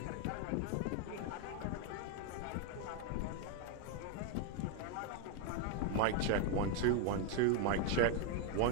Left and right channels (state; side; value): different; both; correlation 0.01